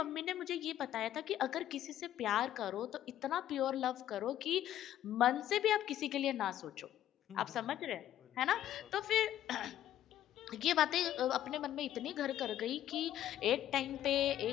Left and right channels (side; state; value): right; quieter; 12.1 dB